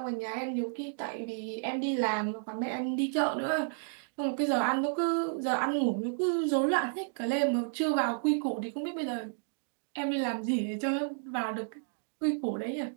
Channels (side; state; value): left; silent; digital silence